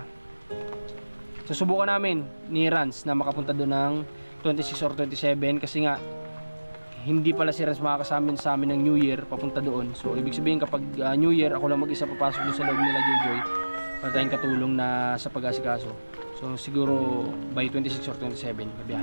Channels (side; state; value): both; inverted; correlation -1.00